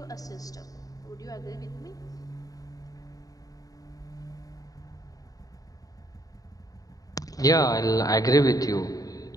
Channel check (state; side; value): late; right; 0.18 ms